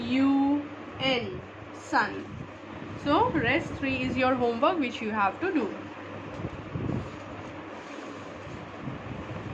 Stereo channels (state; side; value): identical; both; correlation 1.00